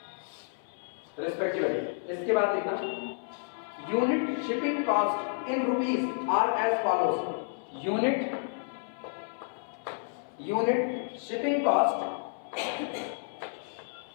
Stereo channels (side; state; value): right; silent; 57 dB below the other